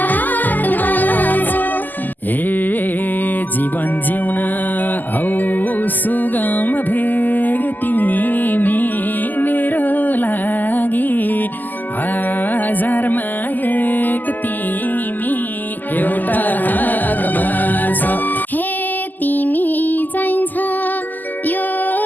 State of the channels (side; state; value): right; late; 0.085 ms